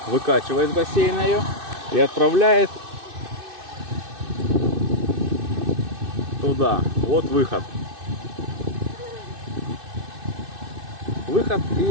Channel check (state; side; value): late; left; 2.6 ms